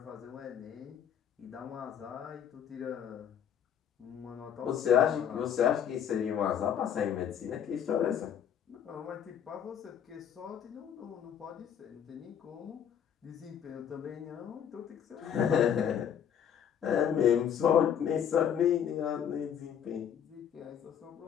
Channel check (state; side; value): quieter; right; 8.8 dB